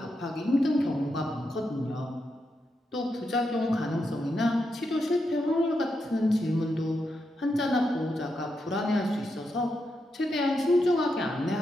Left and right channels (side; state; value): both; normal; correlation 0.84